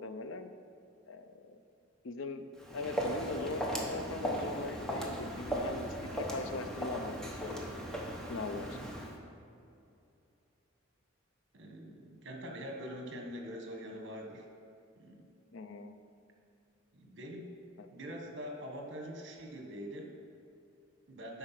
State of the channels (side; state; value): both; normal; correlation 0.23